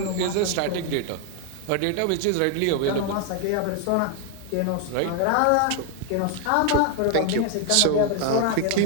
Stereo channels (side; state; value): both; different; correlation 0.00